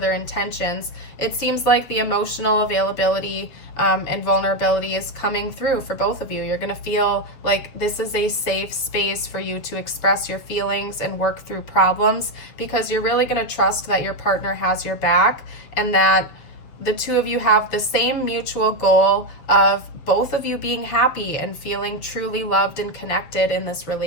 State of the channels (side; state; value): right; late; 7.5 ms